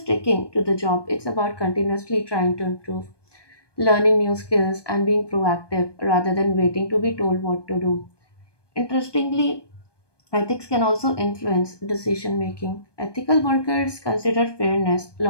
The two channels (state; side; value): late; right; 1.2 ms